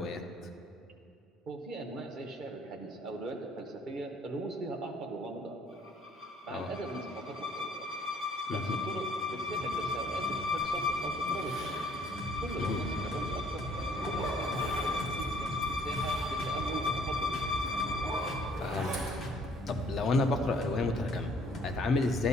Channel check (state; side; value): normal; both; correlation 0.61